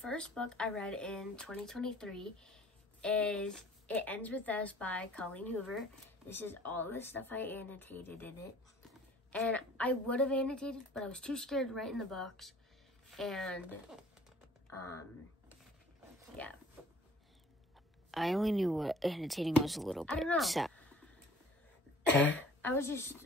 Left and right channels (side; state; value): both; normal; correlation 0.51